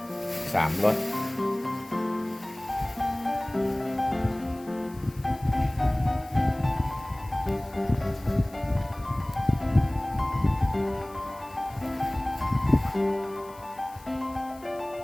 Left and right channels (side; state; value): left; noise; hiss, 24 dB below the sound